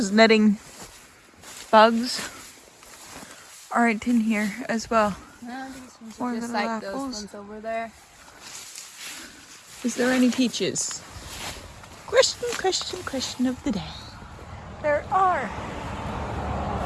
netting bugs aren't in here as well. No, these More ones are just little like those apples. ones over there. Is there any peaches? Question of the day. There are.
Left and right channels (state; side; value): identical; both; correlation 1.00